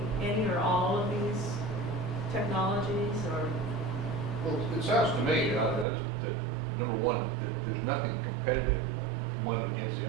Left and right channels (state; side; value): drops out; left; at 5.9 s